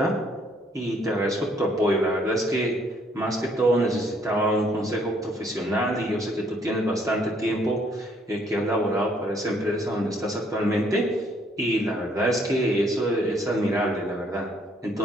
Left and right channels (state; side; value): normal; both; correlation 0.66